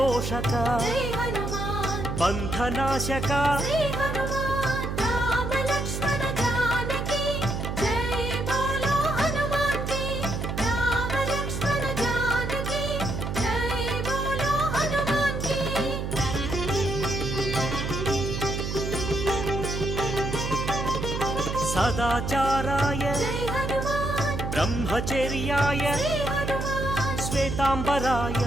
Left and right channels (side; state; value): right; noise; hum, 3 dB below the sound